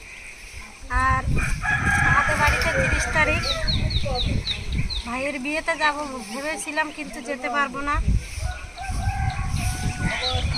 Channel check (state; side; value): identical; both; correlation 1.00